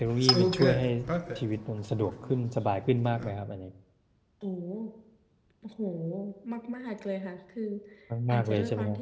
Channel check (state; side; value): identical; both; correlation 1.00